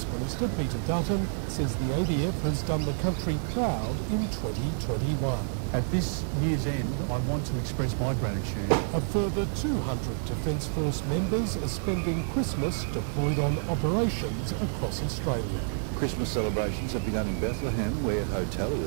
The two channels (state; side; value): silent; left; 56 dB below the other